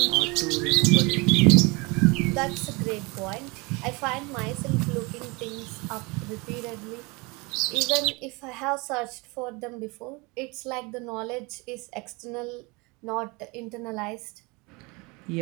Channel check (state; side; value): quieter; left; 26.9 dB